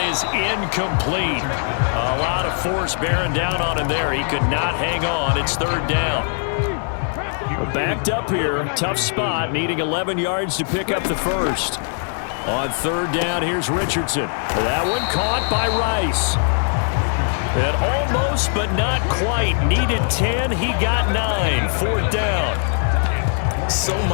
is incomplete. A lot of force bearing down on him there. He could not hang on. It's 3rd down. Backed up here, tough spot, needing 11 yards to pick up the first. On 3rd down, here's Richardson. That one caught by Rice. And almost, but not quite. Needed 10, he got 9. 4th down. So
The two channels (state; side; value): silent; right; 56 dB below the other